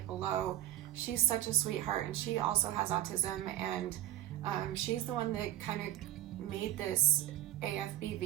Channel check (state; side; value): quieter; left; 13.4 dB